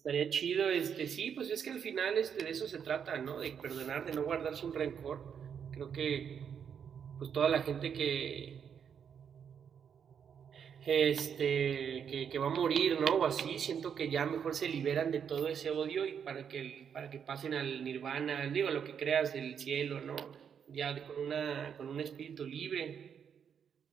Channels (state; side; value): quieter; left; 7.6 dB